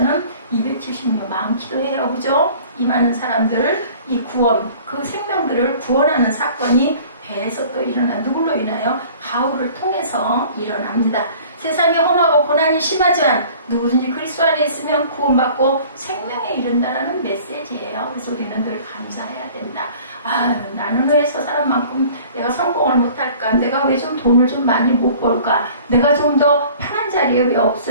276명 많기도 해요. 그죠? 이 많은 사람들, 이 구원, 그 생명들을 구원하는 사건이 배에서 또 일어나, 누굴로 인하여? 바울을 통해서 일어납니다. 세상이 험하고 고난이 심하지만 누구든지 그리스도 안에 있으면 구원받고 생명에 이른다라는 메시지예요. 그래서 우리는 늘 감사해야 된다. 아, 나는 왜 저 사람만큼 내가 성공을 못할까? 내가 왜 좀 돈을 좀 많이 못 벌까? 내가 좀 더 편한 자리에 왜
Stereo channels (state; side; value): inverted; both; correlation -0.48